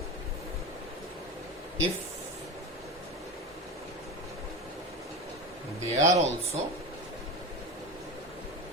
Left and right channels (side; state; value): both; normal; correlation 0.24